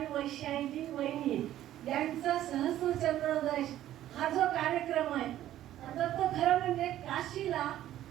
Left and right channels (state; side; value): quieter; left; 12.8 dB